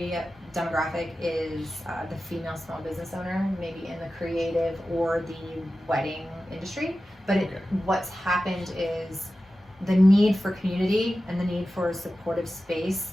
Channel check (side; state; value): both; normal; correlation 0.94